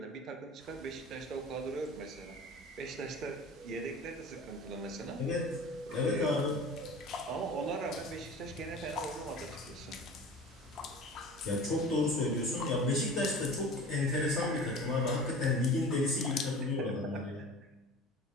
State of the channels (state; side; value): normal; both; correlation 0.38